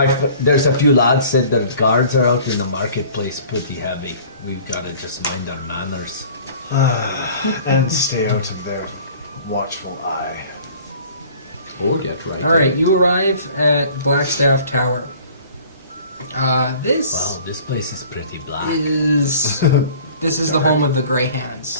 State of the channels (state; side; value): inverted; both; correlation -0.48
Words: There's a few lads said the guards are out in the marketplace pretty heavy. We've got to just mind our manners. And stay out of their watchful eye. Or get right. Alright, you arrive at Blackstaff Tower. This Wow, this place is pretty black. is this is the home of the Grey